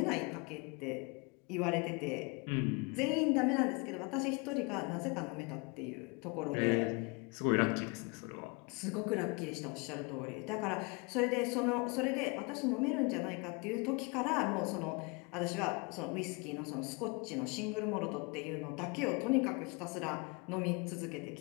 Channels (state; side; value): quieter; right; 29.6 dB